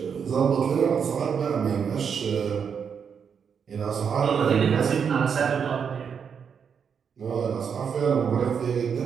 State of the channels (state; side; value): quieter; left; 6.9 dB